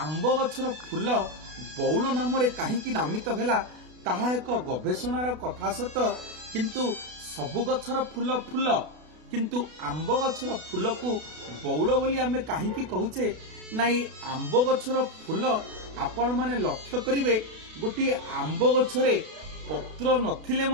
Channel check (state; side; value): late; left; 32 ms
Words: गछर फूल बौल नाम कहीं नामित है ताहा एक गवेषणार कथा सत किंतु सबु गछर फूल फूल किंतु आंब गछर फूल को बौल बोली आमे कहीं कहूचे ना। आंब गछर फूल आपण माने लक्ष्य करिवे गोटे आंब गछरे पत्र नथिले